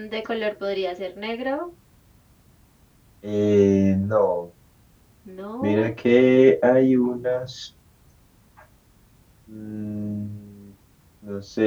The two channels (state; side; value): identical; both; correlation 1.00